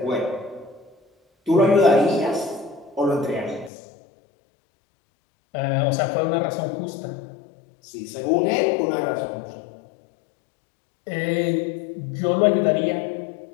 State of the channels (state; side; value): drops out; right; at 3.7 s